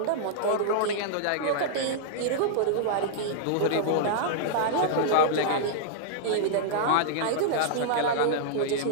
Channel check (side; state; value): both; different; correlation -0.02